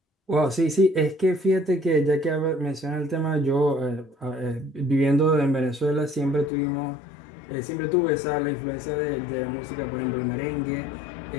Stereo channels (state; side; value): drops out; right; at 6.5 s